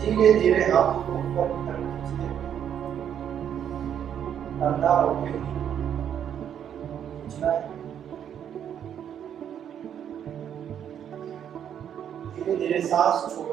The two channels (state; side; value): quieter; left; 9.2 dB